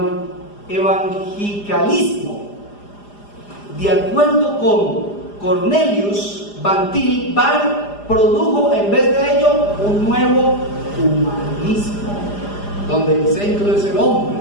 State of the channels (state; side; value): late; right; 4.9 ms